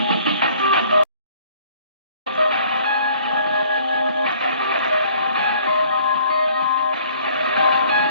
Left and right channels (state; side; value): inverted; both; correlation -0.57